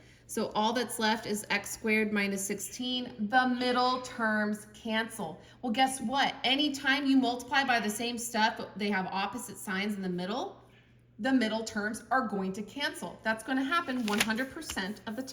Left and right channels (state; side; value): identical; both; correlation 1.00